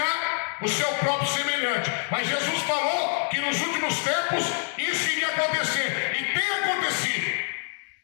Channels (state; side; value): silent; right; 59 dB below the other